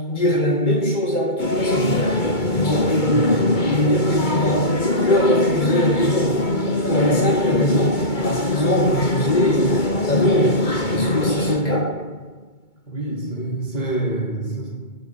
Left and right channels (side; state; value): right; late; 2.2 ms